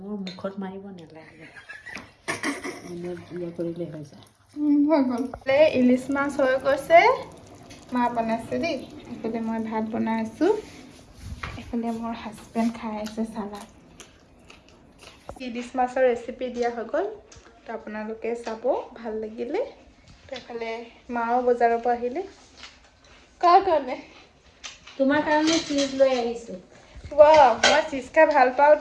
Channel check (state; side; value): identical; both; correlation 1.00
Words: মুখত মাৰিব নালাগে, কৰিলে হৈ যায়। হৈ গ'ল। ইলিচ মাছ হৈ গৈছে, মা বনাইছে দেই। এইফালে মই ভাত বনাই আছোঁ, এইফালে মোৰ হাজবেণ্ড খাই আছে চালাড। ইলিচ মাছৰ ৰেচিপি দিয়া হৈ গ'ল। তো আপোনালোকে চাব, ভাল লাগিলে। তো এইফালে মাও বজাৰৰ পৰা আহিলে। কাৰ কাৰণে? তোমাৰ কাৰণে চিজ লৈ আহিছোঁ। মই চিজ খাই ভাল